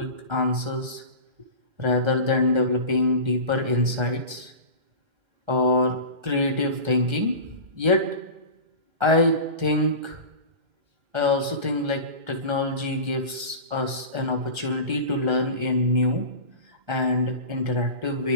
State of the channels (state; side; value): late; left; 1.3 ms